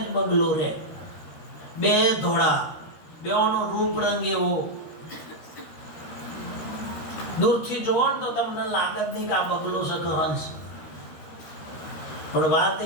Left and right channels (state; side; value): late; right; 13 ms